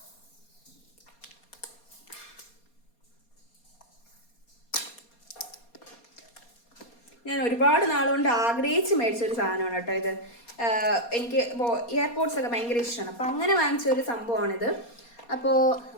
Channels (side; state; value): right; late; 4.2 ms